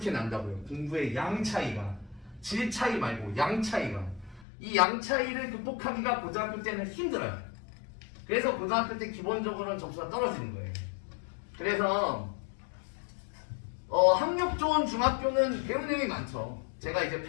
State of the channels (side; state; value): right; drops out; at 4.5 s